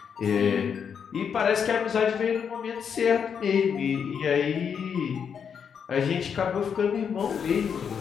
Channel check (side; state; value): right; quieter; 7.1 dB